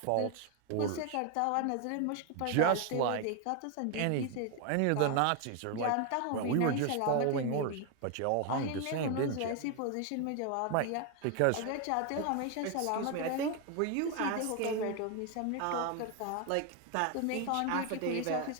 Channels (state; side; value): different; both; correlation 0.01